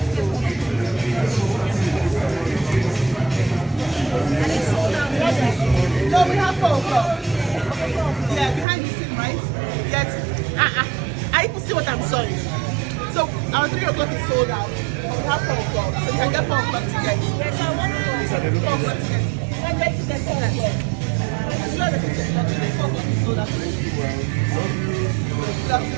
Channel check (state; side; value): drops out; left; at 8.7 s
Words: No, we have 4 o'clock. Yeah, behind the scene, right? Yes. I even see what I'm sewing. So our 3 o'clock is sold out. We have 4 o'clock. So you can get 4 o'clock tickets. Yes, I want 4 o'clock tickets. I'm ready to get 4 o'clock. As well as 4 o'clock is sold out.